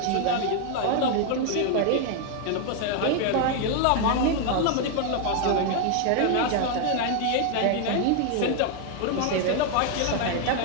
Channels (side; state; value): both; different; correlation 0.01